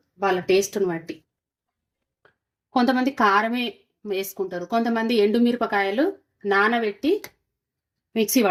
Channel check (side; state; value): both; identical; correlation 1.00